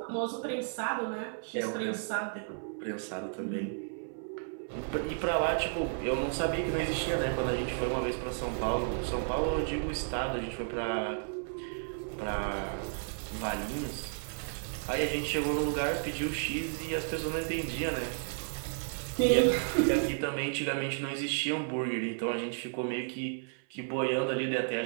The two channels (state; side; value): silent; left; 56 dB below the other